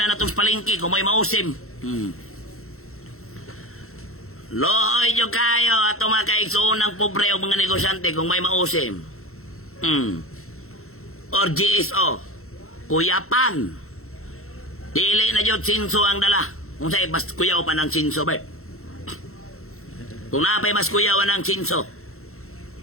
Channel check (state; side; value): late; right; 0.63 ms